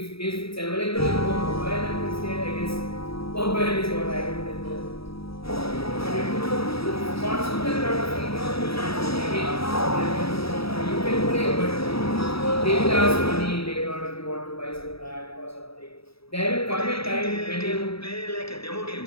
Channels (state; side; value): late; right; 0.77 ms